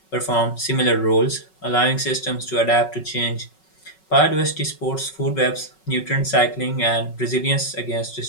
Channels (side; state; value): right; late; 5.4 ms